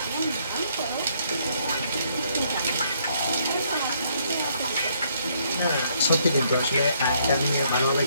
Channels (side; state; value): both; inverted; correlation -0.69